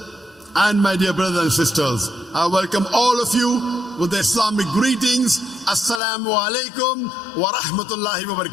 and my dear brothers and sisters, I welcome all of you with the Islamic greetings. Assalamu alaikum wa rahmatullahi wa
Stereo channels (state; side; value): drops out; right; at 6.0 s